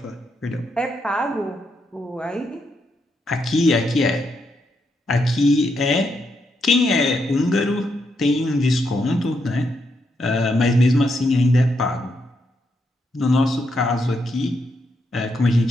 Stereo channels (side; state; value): both; normal; correlation 0.80